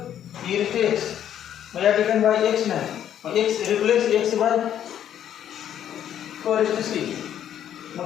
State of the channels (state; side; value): quieter; right; 10.2 dB